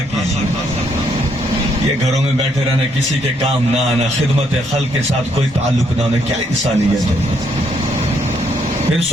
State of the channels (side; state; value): both; normal; correlation 0.72